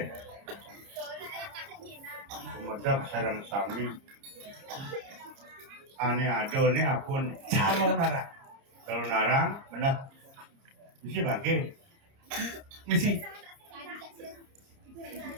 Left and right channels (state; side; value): late; left; 30 ms